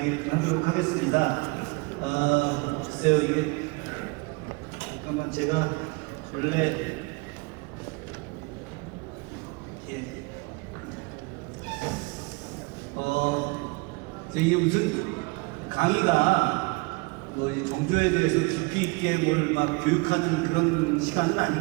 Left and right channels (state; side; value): quieter; left; 28.3 dB